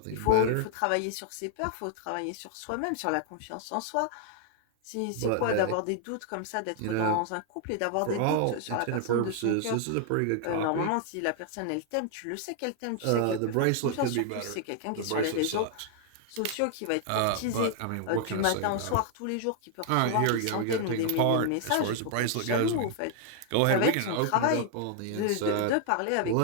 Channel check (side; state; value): both; different; correlation 0.00